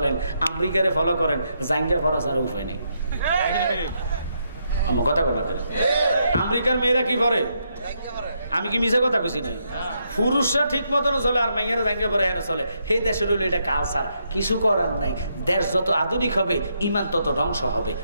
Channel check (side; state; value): both; inverted; correlation -0.78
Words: আমেরিকারে ফলো করেন, জাঙ্গা ফরাস আর উপায় নেই। আমার কথা কথা করে আমেরিকার মেয়েরা কি করে? আমি কি মিছে কথা কইছি নাই? পুরুষরা ঠিক মতন চলে আর মাইয়ারা জাঙ্গা পরে এরা চলে। সেই দেশের হলো এটা কালচার, কিছু করার নাই। দেশ যত আধুনিক হবে ইমান তত ধ্বংস হবে।